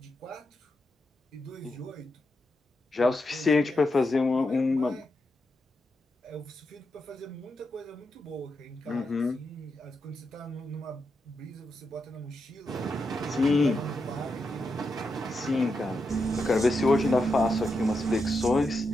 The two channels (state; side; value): normal; both; correlation 0.86